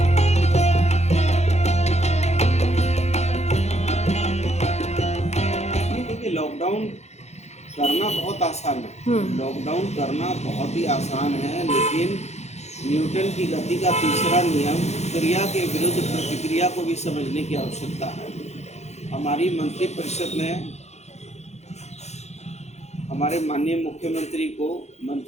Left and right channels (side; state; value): right; late; 0.32 ms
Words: लॉकडाउन करना बहुत आसान है, लॉकडाउन करना बहुत ही आसान है, लेकिन न्यूटन की गति का तीसरा नियम क्रिया के विरुद्ध प्रतिक्रिया को भी समझने की आवश्यकता है। हमारी मंत्रिपरिषद ने हमारे माननीय मुख्यमंत्री को